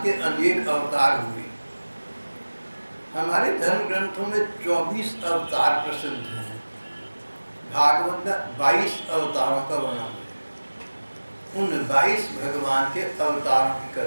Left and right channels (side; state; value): both; inverted; correlation -1.00